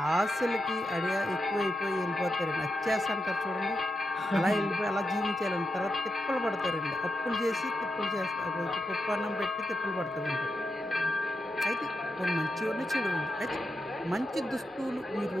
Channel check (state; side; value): normal; both; correlation 0.87